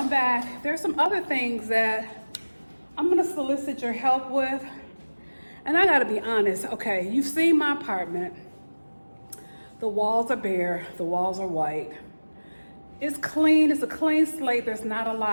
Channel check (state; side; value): inverted; both; correlation -1.00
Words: back. There's some other things that I'm gonna solicit your help with. And I gotta be honest, okay, you've seen my apartment. The walls are bare, the walls are white. It's clean, it's a clean slate, there's not a